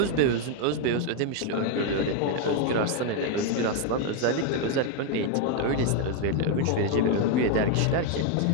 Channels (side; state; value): both; different; correlation 0.01